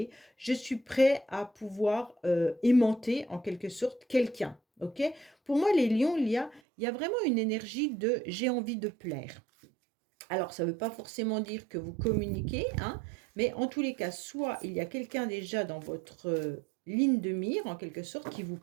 Je suis prêt à pouvoir aimanter en quelque sorte quelqu'un. Ok? Pour moi, les lions, il y a vraiment une énergie de j'ai envie de plaire. Alors, ça ne veut pas forcément dire que vous communiquez, hein, mais en tous les cas, soit il y a quelqu'un déjà dans votre ligne de mire, en quelque sorte, qui vous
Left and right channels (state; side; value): drops out; left; at 6.6 s